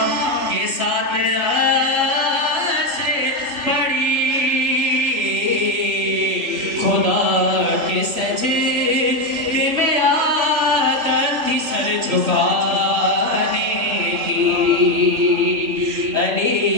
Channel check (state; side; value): late; left; 2.9 ms